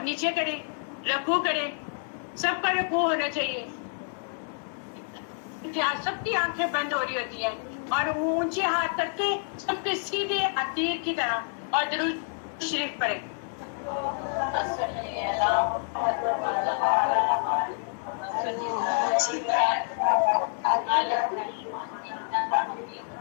نیچے کریں، رکوع کریں، سب کا رکوع ہونا چاہیے۔ سب کی آنکھیں بند ہو رہی ہوتی ہیں اور اونچے ہاتھ کر کے سب کے سیدھے عتیر کی طرح، اور درود شریف پڑھیں۔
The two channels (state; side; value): silent; right; 59 dB below the other